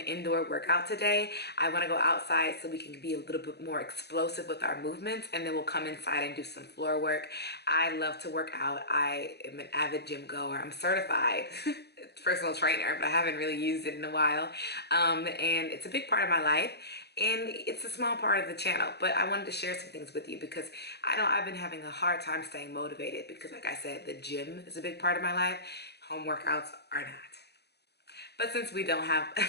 indoor workout today. I want to go outside so we can be a little bit more explosive with our movements, and then we'll come inside and do some floor work. I love to work out. I am an avid gym goer. I'm certified personal trainer, but I haven't really used it in a while. And it's a big part of my life. And it's a small part of the channel, but I wanted to share some things with you because I know I've been having a hard time staying motivated because, like I said, the gym is a big part of my life. Home workouts are not. But since we don't have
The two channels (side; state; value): right; late; 0.48 ms